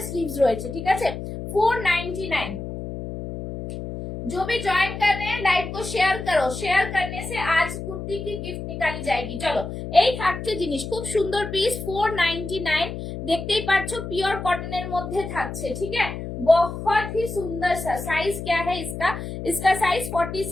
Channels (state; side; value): noise; left; hum, 7 dB below the sound